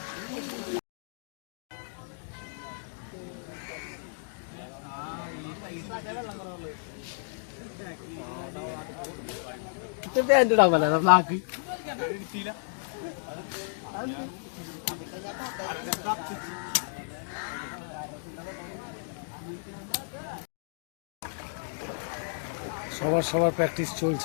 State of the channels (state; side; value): silent; right; digital silence